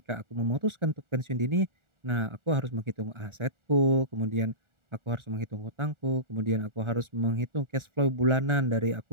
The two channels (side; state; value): left; late; 1.4 ms